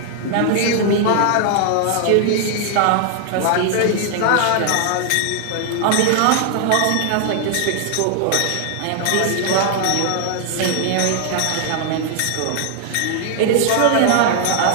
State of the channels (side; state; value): both; different; correlation 0.00